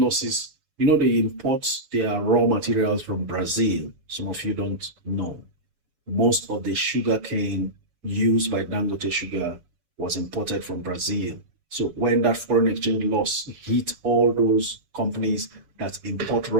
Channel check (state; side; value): late; left; 7.0 ms